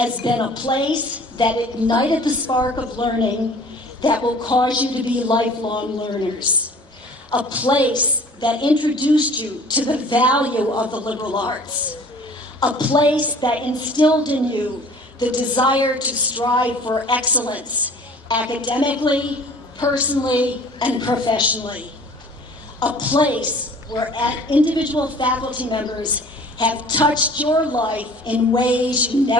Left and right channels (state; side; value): normal; both; correlation 0.49